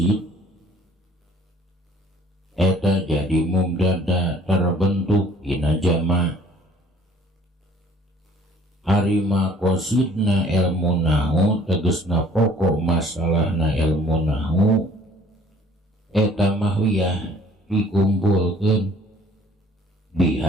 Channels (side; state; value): both; normal; correlation 0.55